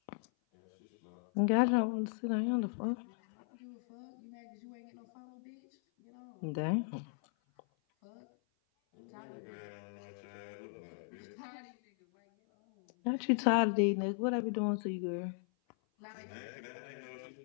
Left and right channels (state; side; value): silent; right; 53 dB below the other